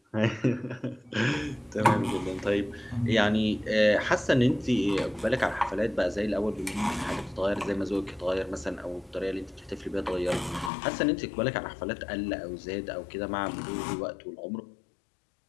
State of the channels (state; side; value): drops out; right; at 10.7 s